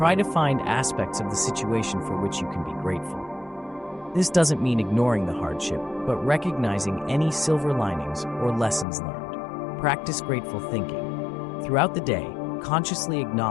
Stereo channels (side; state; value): right; drops out; at 8.8 s